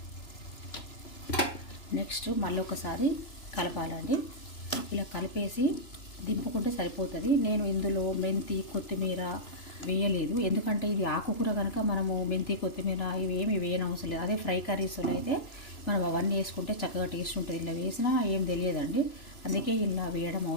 నెక్స్ట్ మళ్ళీ ఒకసారి కలపాలండి. ఇలా కలిపేసి దింపుకుంటే సరిపోతుంది. నేను ఇందులో మెంతి, కొత్తిమీర వేయలేదు, ఎందుకంటే ఇది ఆకుకూర కనుక మనము మెంతి, కొత్తిమీర ఇవి ఏమి వేయనవసరం లేదు. అదే ఫ్రై కర్రీస్లో అయితే మనం అవన్నీ వేసుకుంటే చక్కగా టేస్ట్ ఉంటుంది. ఇలా వేసినా ఏం తెలియదండి, అందుకే ఇలా వేయడం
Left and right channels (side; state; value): right; late; 2.9 ms